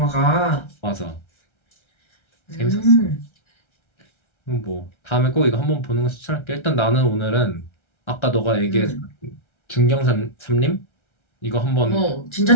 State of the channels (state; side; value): late; right; 1.3 ms